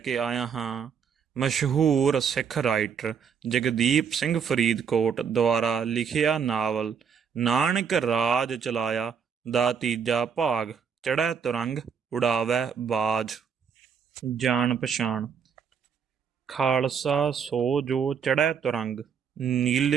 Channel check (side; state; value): left; quieter; 6.8 dB